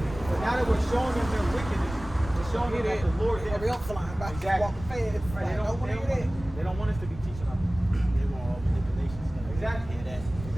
But now that we're showing them their wickedness, we're showing them that the Lord did. Real flying by, Exactly. walking fast. Right, they don't want us to be teaching our people. They want all manipulations. Exactly. Hear that?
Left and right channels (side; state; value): right; noise; rumble, 13 dB below the sound